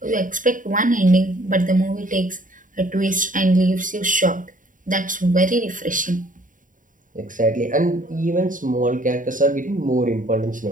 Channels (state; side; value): late; left; 0.38 ms